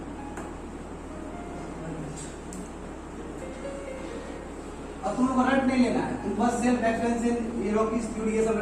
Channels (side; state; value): both; identical; correlation 1.00